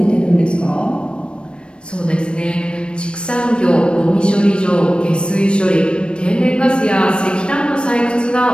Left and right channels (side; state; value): right; late; 0.056 ms